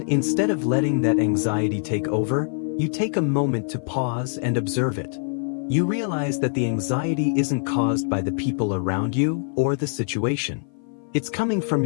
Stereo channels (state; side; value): silent; right; 56 dB below the other